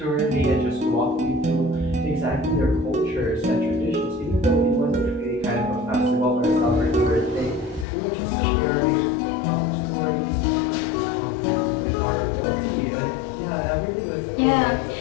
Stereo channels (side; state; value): right; drops out; at 7.9 s